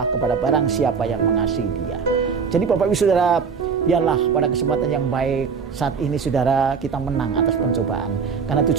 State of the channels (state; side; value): quieter; left; 5.8 dB